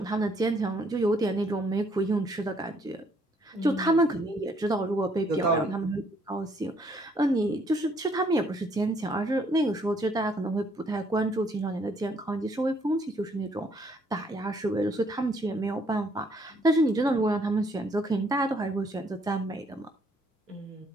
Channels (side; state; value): both; normal; correlation 0.67